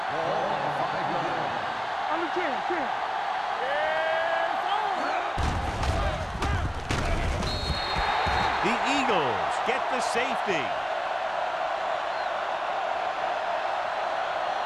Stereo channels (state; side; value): identical; both; correlation 1.00